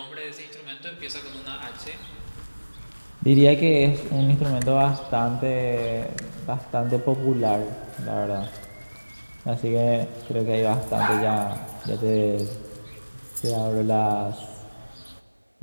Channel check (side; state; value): both; inverted; correlation -1.00